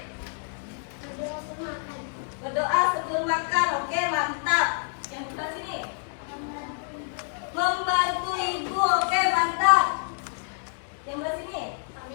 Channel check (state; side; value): silent; right; 60 dB below the other